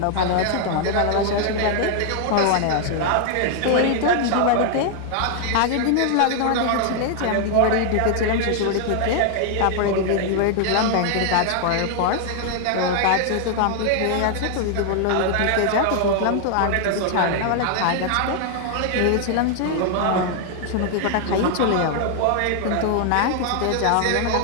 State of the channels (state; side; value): different; both; correlation 0.00